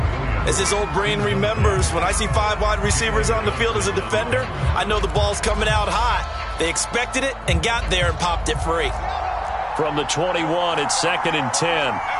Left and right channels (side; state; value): both; identical; correlation 1.00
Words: As his old brain remembers, when I see 5 wide receivers on the field as a defender, I know the ball's coming out hot. They expected it and got there and popped it free. From the 21, it's 2nd and 10.